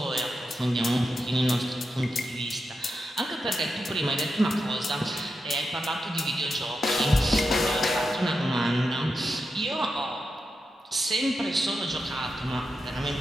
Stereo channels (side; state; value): both; normal; correlation 0.88